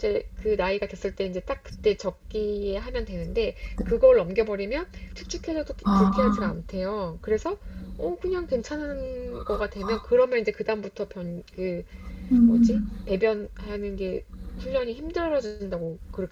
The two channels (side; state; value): both; identical; correlation 1.00